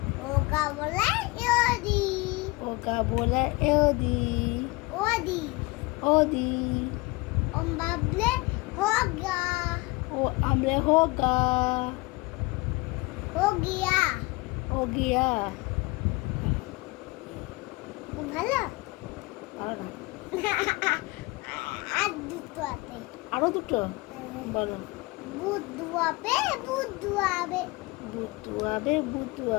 ओगा बोला योदी ओगा बोला एओदी ओदी ओदी ओम बाबले होगा ओ हमले होगा हो गया हो गया ভালো ভালো না আর দুটো আছে আরো দুটো বলো বুদ্ধু আবে বুদ্ধু আবে বুদ্ধু আবে বুদ্ধু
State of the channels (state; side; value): quieter; right; 23.3 dB